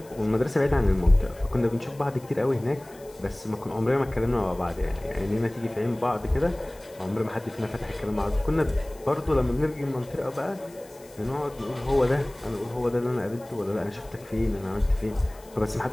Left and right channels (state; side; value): noise; left; hiss, 24 dB below the sound